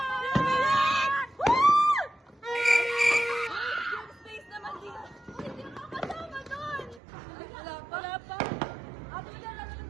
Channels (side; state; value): left; drops out; at 7.0 s